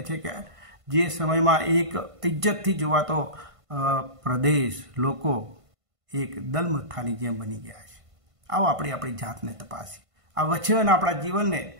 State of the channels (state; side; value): late; left; 1.5 ms